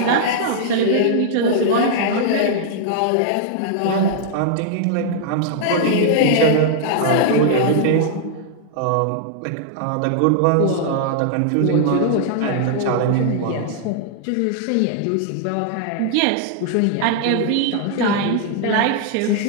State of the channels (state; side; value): different; both; correlation -0.01